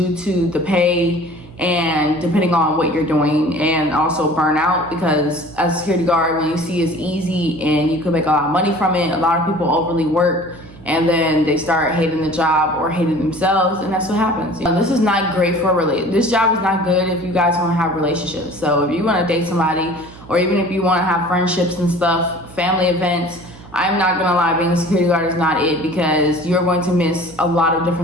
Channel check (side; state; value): right; noise; hum, 20 dB below the sound